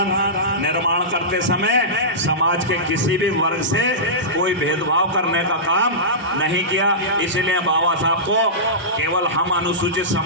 निर्माण करते समय समाज के किसी भी वर्ग से कोई भेदभाव करने का काम नहीं किया। इसलिए बाबा साहब को केवल हम अनुसूचित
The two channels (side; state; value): both; normal; correlation -0.17